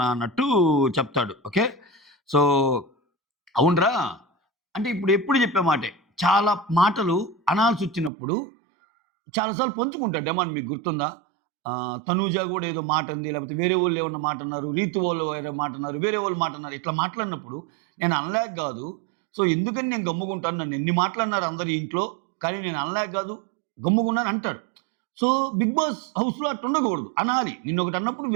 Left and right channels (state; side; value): drops out; left; at 8.1 s